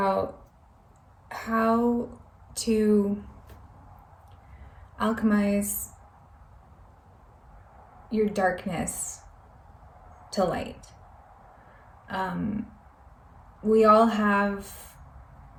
how to alchemize your darkness to light. We all have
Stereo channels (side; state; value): both; identical; correlation 1.00